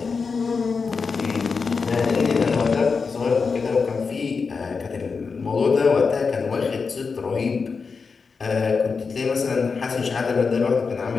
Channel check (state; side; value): quieter; right; 5.0 dB